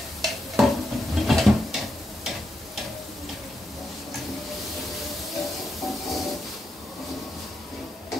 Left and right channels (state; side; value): normal; both; correlation 0.84